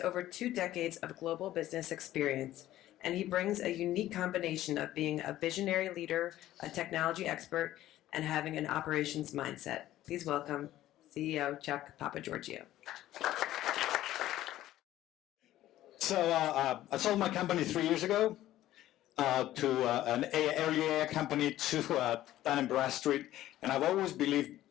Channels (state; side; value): quieter; right; 14.1 dB